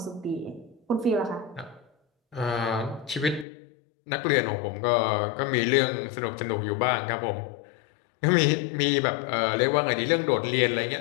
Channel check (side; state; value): right; drops out; at 3.5 s